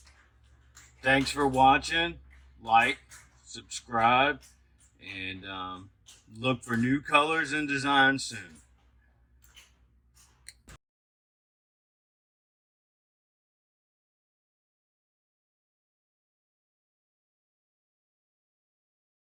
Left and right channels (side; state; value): both; identical; correlation 1.00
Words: Thanks for watching. Like, subscribe, and look for new colors and designs soon.